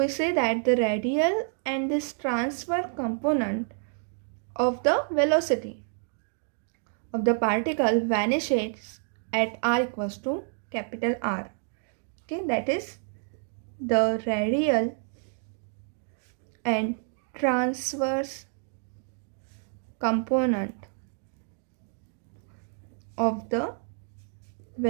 say that the radial and this transverse component of the velocity of the particle vanishes at r equals to capital R. Okay, that is the radial and transverse component of the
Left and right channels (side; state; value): left; silent; 59 dB below the other